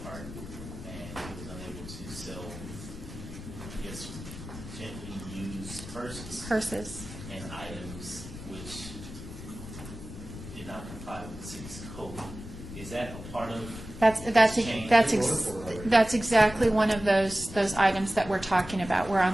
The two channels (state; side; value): noise; left; rumble, 12 dB below the sound